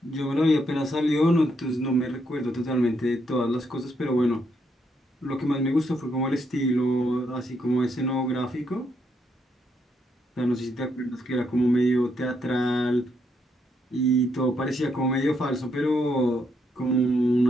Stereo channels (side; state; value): both; normal; correlation 0.76